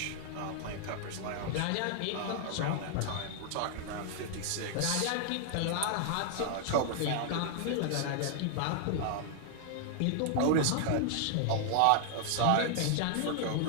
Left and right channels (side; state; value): both; different; correlation 0.00